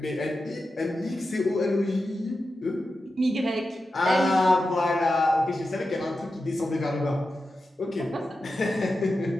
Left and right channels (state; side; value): normal; both; correlation 0.91